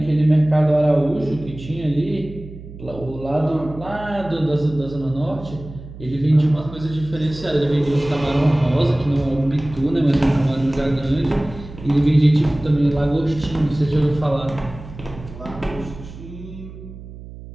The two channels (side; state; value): right; noise; hum, 15 dB below the sound